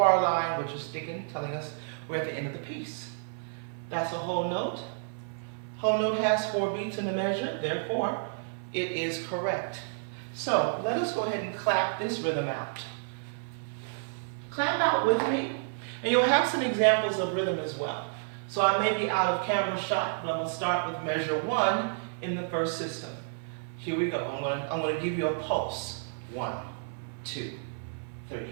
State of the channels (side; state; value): left; silent; 55 dB below the other